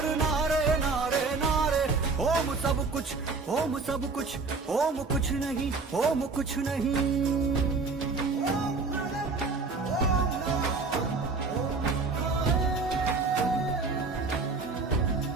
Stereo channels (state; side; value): quieter; left; 4.2 dB